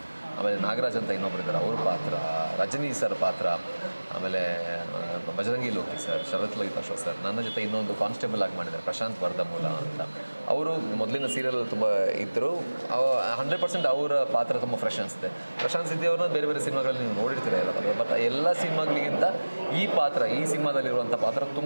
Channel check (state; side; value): inverted; both; correlation -1.00